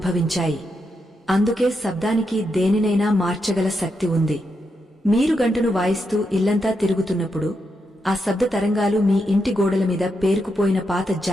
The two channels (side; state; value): both; normal; correlation 0.83